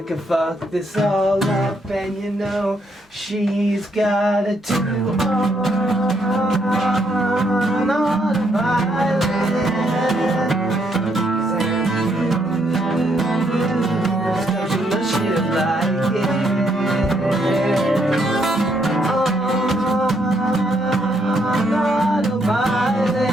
can fuck this all up, and you know she's got a do on a violin.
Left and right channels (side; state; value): both; normal; correlation 0.74